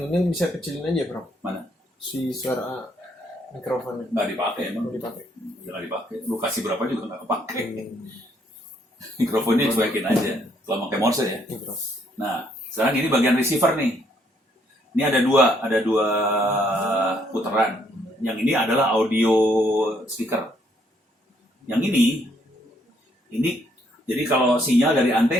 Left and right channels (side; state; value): both; normal; correlation 0.70